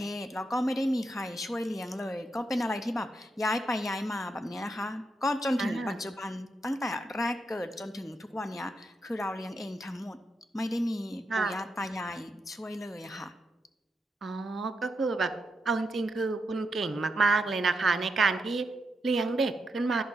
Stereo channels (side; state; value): both; normal; correlation 0.84